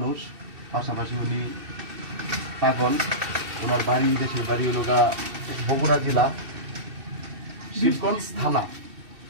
পাশাপাশি উনি পাগল। ওনার বাড়ি, দেশের বাড়ি হলো বগুড়া জেলা শিবগঞ্জ থানা।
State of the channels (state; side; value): late; left; 2.6 ms